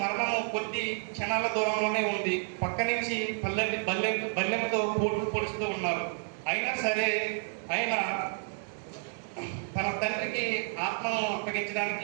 మరణము కొద్ది క్షణాల దూరంలోనే ఉంది. పక్క నుంచి బల్లెంతో పొడుస్తూ ఉన్నారు. అయినా సరే ఆయన తన తండ్రికి ఆత్మను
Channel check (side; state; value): left; silent; 57 dB below the other